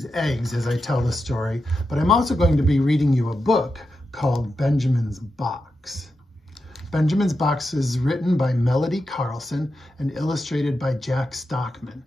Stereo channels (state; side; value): normal; both; correlation 0.88